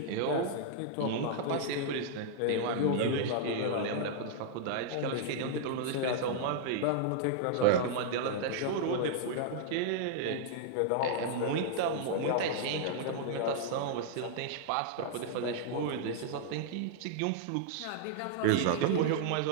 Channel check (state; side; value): different; both; correlation -0.01